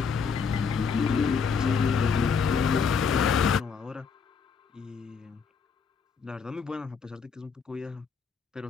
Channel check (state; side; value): quieter; right; 5.9 dB